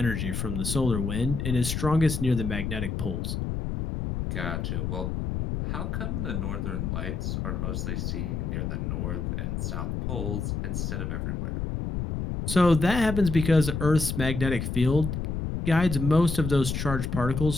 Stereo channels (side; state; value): left; noise; rumble, 2 dB below the sound